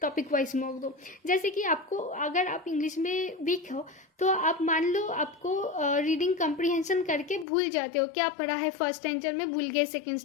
टॉपिक वाइज मॉक दो। जैसे कि आपको, अगर आप इंग्लिश में वीक हो तो आप मान लो आपको रीडिंग कंप्रीहेंशन करके भूल जाते हो, क्या पढ़ा है फर्स्ट स्टैंडर्ड में, भूल गए सेकंड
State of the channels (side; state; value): right; drops out; at 7.5 s